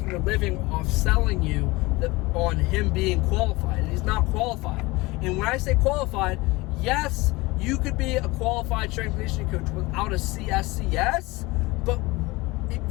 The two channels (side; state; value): right; quieter; 22.2 dB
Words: a living off selling you that on him being qualified, and he's not qualified. And when I say qualified, yes, you could be a qualified strength and conditioning coach without a CSCS, but